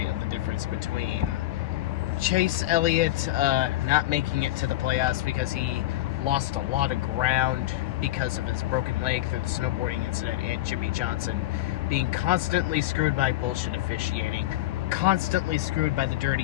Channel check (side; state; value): right; quieter; 15.8 dB